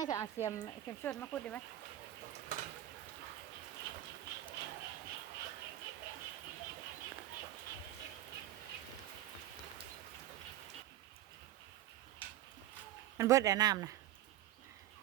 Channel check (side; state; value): left; quieter; 13.5 dB